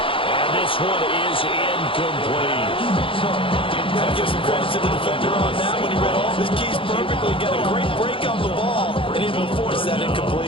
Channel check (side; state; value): right; late; 0.26 ms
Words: And this one is incomplete. Got to give some credit to the defender on that when he read all of his keys perfectly. Got a great break on the ball and able to force that